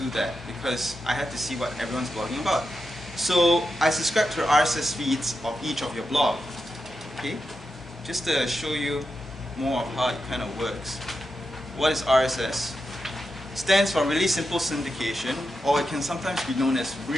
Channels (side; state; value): both; normal; correlation 0.88